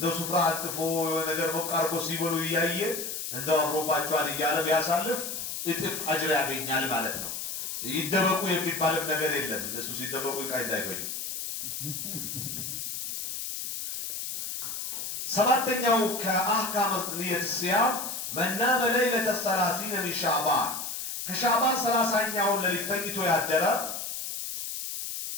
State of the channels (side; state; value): left; noise; hiss, 5 dB below the sound